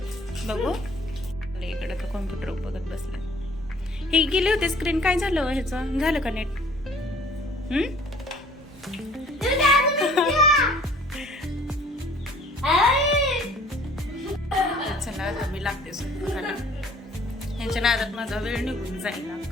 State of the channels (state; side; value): normal; both; correlation 0.54